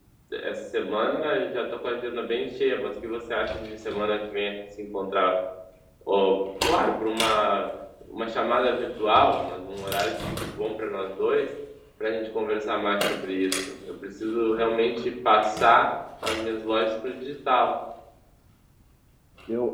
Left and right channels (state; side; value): identical; both; correlation 1.00